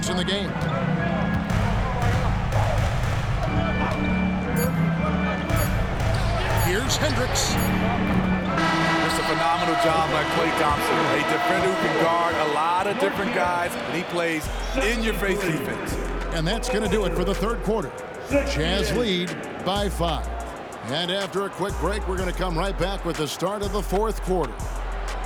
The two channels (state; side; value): identical; both; correlation 1.00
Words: in the game. Here's Hendricks. It's a phenomenal job by Klay Thompson. A defender who can guard a lot of different guys, and he plays in-your-face defense. And that's going to do it for the third quarter. Jazz lead by 5. And after a quick break, we're going to come right back with the start of the fourth quarter.